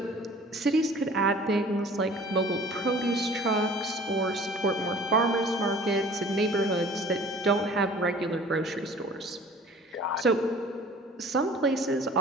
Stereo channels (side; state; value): both; normal; correlation 0.48